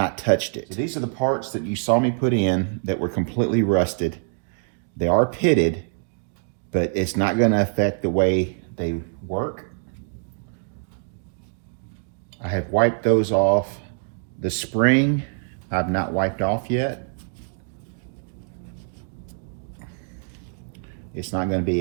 touched it. So these are the parts that you saw me put in that were completely rusted. They are pitted, but it's not going to affect the way they work. I have wiped those off. The spring, I've not wiped off yet. It's not going to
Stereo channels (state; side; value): silent; left; digital silence